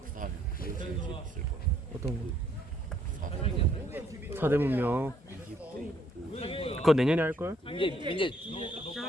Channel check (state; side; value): normal; both; correlation 0.68